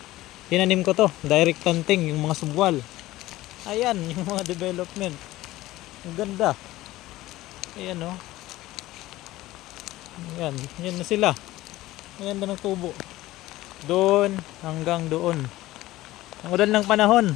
tinanim ko to. Direct planting, yung mga subwal. Ayan, yung mga development. Ang ganda. Ayan oh. Ayan, yan na sila. Ayan na ng tubo. Doon hanggang doon. Ang ulan ng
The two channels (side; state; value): right; quieter; 16.9 dB